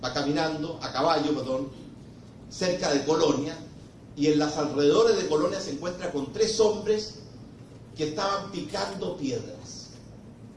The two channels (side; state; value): both; identical; correlation 1.00